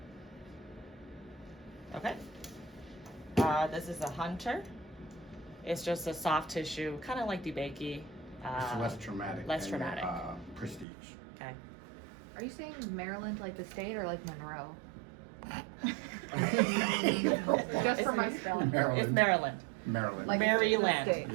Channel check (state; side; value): drops out; left; at 10.9 s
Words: Okay. This is a Hunter. It's just a soft tissue, kind of like DeBakey. It's less traumatic. less than, traumatic. Prestige. Okay. Are you saying Maryland like the state or like Monroe? Just for my spelling. It's Maryland. Maryland. Like- Maryland. state.